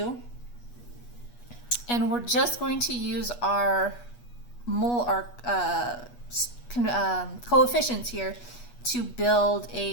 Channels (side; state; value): right; late; 8.3 ms